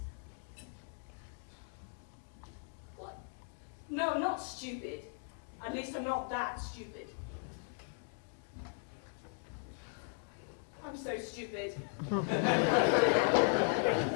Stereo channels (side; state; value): right; silent; 53 dB below the other